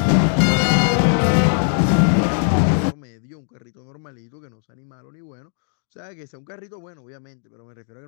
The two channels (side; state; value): right; silent; 55 dB below the other